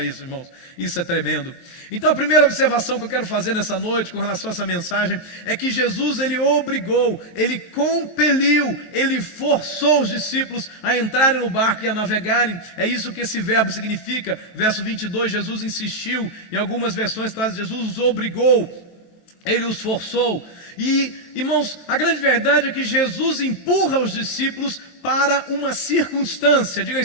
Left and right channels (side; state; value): right; late; 23 ms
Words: irmãos, isso é tremendo. Então a primeira observação que eu quero fazer nessa noite com relação a essa mensagem é que Jesus, ele obrigou, ele compeliu, ele forçou os discípulos a entrarem no barco e a navegarem. É isso que esse verbo significa. Verso 22, Jesus insistiu. Em algumas versões traz: Jesus os obrigou, ele os forçou. E, irmãos, a grande verdade é que Jesus empurra os discípulos para uma circunstância. Diga